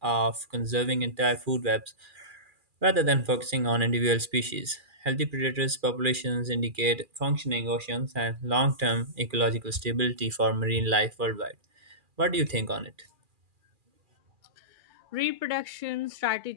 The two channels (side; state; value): left; late; 2.4 ms